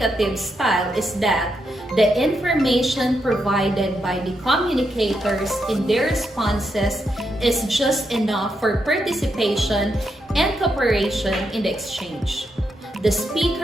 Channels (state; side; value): normal; both; correlation 0.82